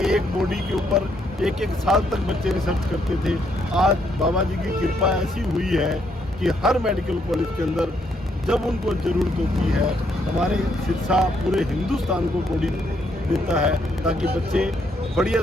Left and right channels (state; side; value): normal; both; correlation 0.73